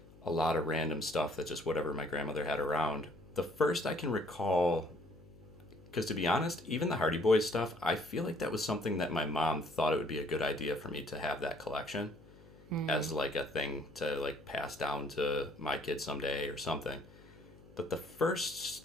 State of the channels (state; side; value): noise; left; hum, 22 dB below the sound